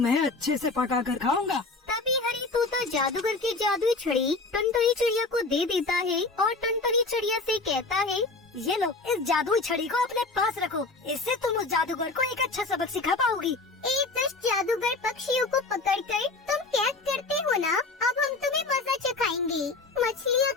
अच्छे से पका कर खाऊंगा। तभी हरी तोता जादूगर की जादुई छड़ी टुनटुनी चिड़िया को दे देता है और टुनटुनी चिड़िया से कहता है, ये लो, इस जादुई छड़ी को अपने पास रखो, इससे तुम उस जादूगर को एक अच्छा सबक सिखा पाओगी। एक दुष्ट जादूगर पक्षियों को पकड़कर तुम कैद करते हो ना, अब हम तुम्हें मजा चखाएंगे। मछलियाँ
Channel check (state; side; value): quieter; right; 3.6 dB